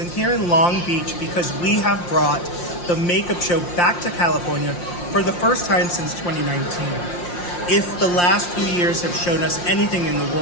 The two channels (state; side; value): late; right; 5.7 ms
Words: here in Long Beach because we have brought the makeup show back to California for the first time since 2019. If the last few years have shown us anything in the